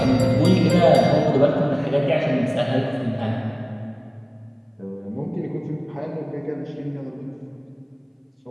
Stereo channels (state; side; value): identical; both; correlation 1.00